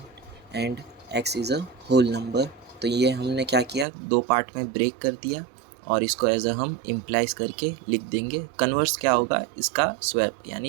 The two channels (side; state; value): left; drops out; at 3.9 s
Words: and X is a whole number. तो ये हमने क्या किया, 2 पार्ट में ब्रेक कर दिया और इसको एज अ हम इम्प्लाइज करके लिख देंगे। कन्वर्स क्या होगा, इसका स्वैप